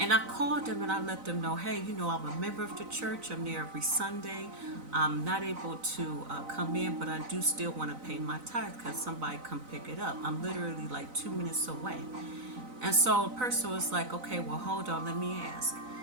I called them and I let them know, hey, I'm a member of the church. I'm there every Sunday. I'm not able to come in, but I do still want to pay my tithe because somebody come pick it up. I'm literally like 2 minutes away. And so the person was like, okay, well, hold on, let me ask.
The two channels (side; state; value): left; late; 4.0 ms